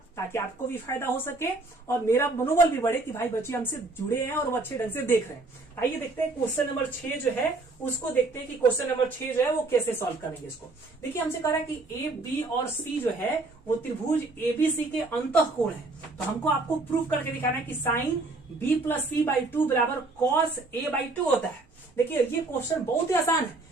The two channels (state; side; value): quieter; left; 3.3 dB